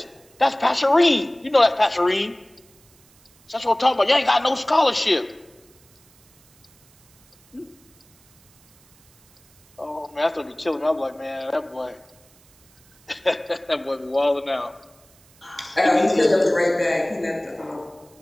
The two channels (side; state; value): right; noise; hiss, 30 dB below the sound